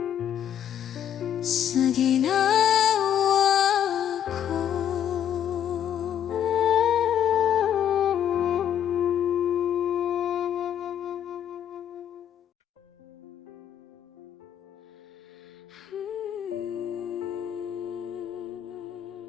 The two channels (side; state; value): right; quieter; 9.8 dB